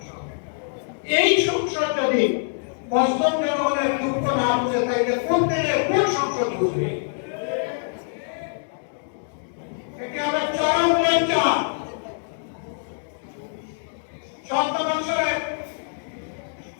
এই সংসদ যদি মজলুম জনগণের দুঃখ না বুঝে তাইলে কোন দিনে কোন সংসদ বুঝবে? এটি হবে চরম লজ্জা। ৭০ বছরের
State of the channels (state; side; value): silent; right; digital silence